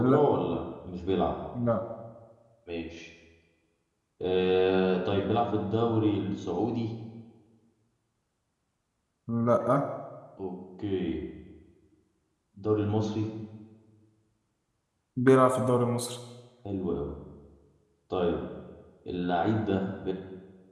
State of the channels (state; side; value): identical; both; correlation 1.00